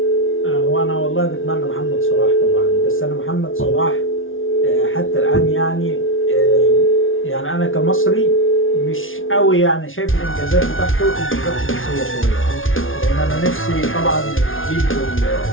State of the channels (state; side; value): late; right; 0.58 ms